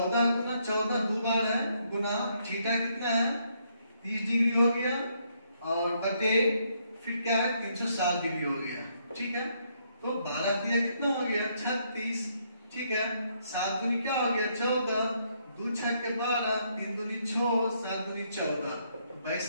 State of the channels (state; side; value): inverted; both; correlation -0.73